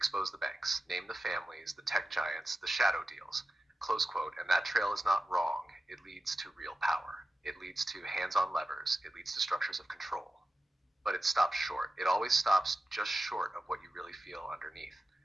the banks, name the families, the tech giants, the shadow deals. Close quote, and that trail is not wrong. It leads to real power. It leads to hands on levers. It leads to structures of control. But it stops short. It always stops just short of what you really feel underneath.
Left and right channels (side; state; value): both; normal; correlation 0.93